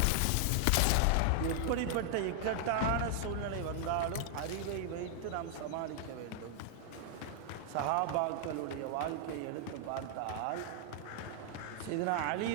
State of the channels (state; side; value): different; both; correlation 0.00